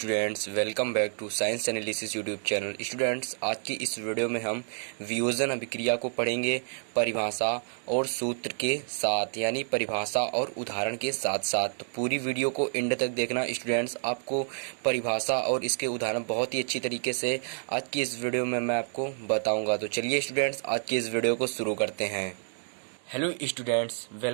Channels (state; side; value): silent; left; digital silence